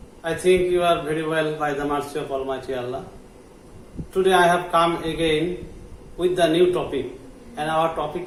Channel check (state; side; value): identical; both; correlation 1.00